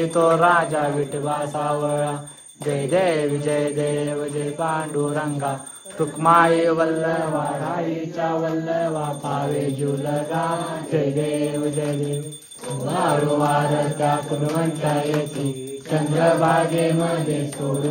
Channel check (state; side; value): identical; both; correlation 1.00